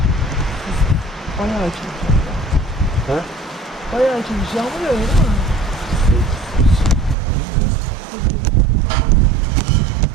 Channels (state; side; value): drops out; left; at 7.2 s